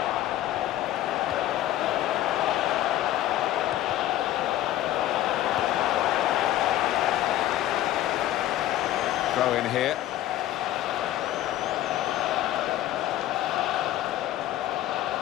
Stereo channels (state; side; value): quieter; right; 13.7 dB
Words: throw in here.